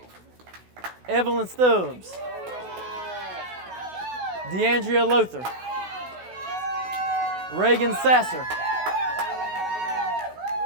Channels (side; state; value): left; late; 16 ms